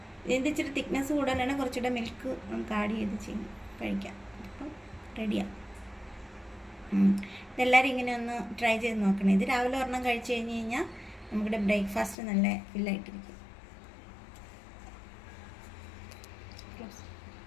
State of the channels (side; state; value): right; drops out; at 12.2 s